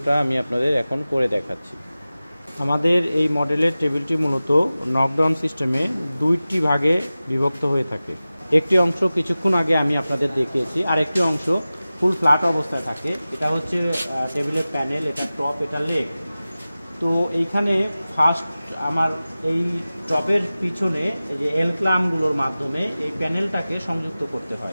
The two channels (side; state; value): both; inverted; correlation -0.96